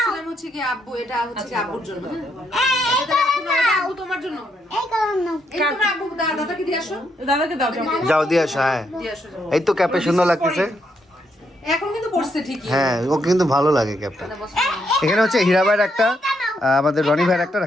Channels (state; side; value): normal; both; correlation 0.77